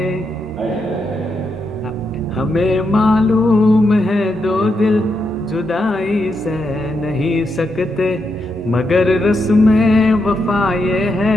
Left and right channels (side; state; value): both; normal; correlation 0.82